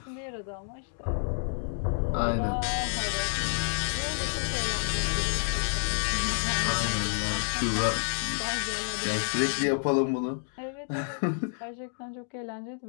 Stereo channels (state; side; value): silent; right; digital silence